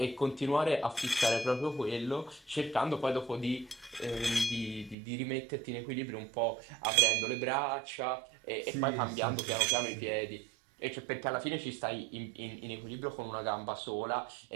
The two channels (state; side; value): drops out; left; at 5.0 s